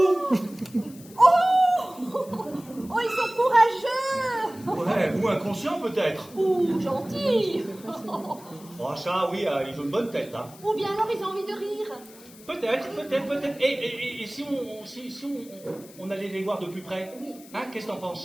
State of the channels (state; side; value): noise; left; hiss, 21 dB below the sound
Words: Oh, ils sont courageux. Ouais, ou inconscient peut-être. Ou gentils. Oh, ça, oui, ils ont une bonne tête, hein. Ou bien alors ils ont envie de rire. Peut-être. Et si on allait les voir de plus près? Hein, qu'est-ce que t'en